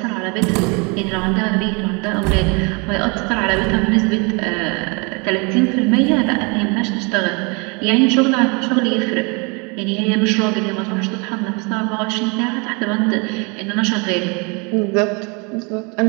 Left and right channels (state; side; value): quieter; left; 31.0 dB